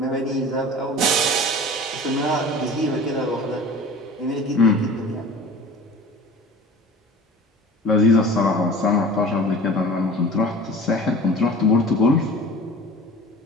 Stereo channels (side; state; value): both; normal; correlation 0.41